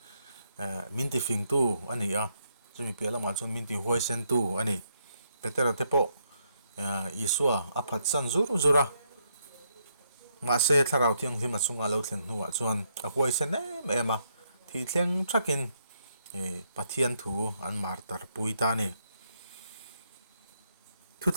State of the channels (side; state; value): both; inverted; correlation -0.76